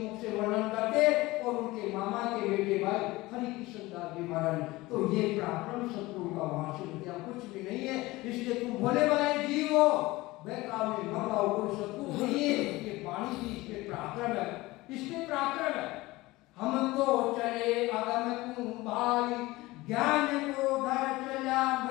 से वर्णन करते, और उनके मामा के बेटे भाई हरि कृष्ण दास जी महाराज। तो ये पराक्रम सतगुरु का वहां से विद्या कुछ भी नहीं है, इसलिए तुम भोले भाले जीव हो, बेकार में मंगाओ, कोई सतगुरु नहीं है। ये वाणी की इसमें पराक्रम है, इसमें पराक्रम है। हम तो चले अगम कुंभाई, ज्ञान को धर चला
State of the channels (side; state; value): right; quieter; 20.0 dB